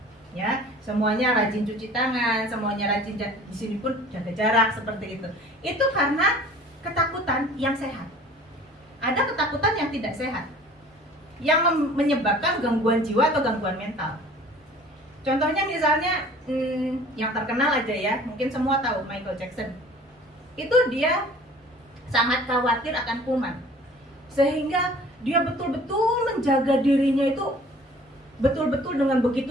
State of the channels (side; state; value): both; normal; correlation 0.48